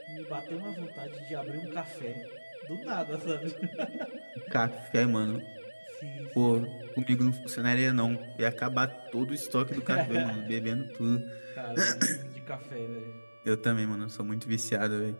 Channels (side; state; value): both; inverted; correlation -1.00